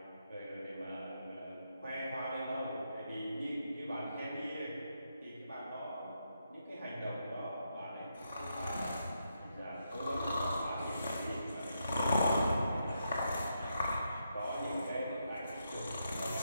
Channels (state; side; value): inverted; both; correlation -0.82